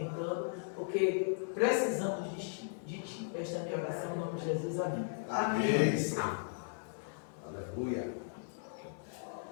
porque precisamos de Ti. Esta é a minha oração em nome de Jesus. Amém. Amém, Senhor. Aleluia.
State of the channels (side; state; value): right; silent; digital silence